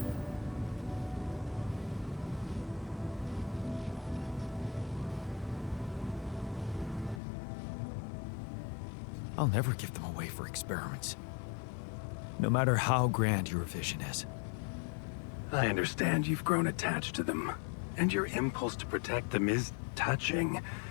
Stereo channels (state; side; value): drops out; right; at 7.2 s